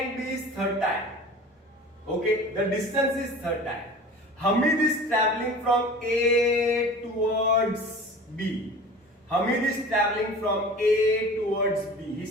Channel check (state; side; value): normal; both; correlation 0.39